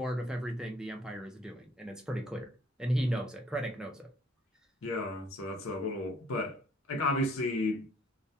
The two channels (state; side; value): normal; both; correlation 0.60